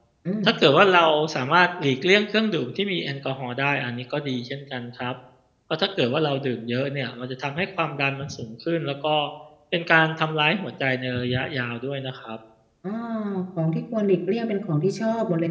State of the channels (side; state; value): both; identical; correlation 1.00